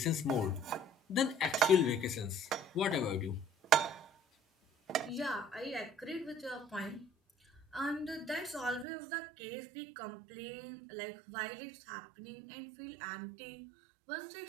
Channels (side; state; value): left; drops out; at 8.8 s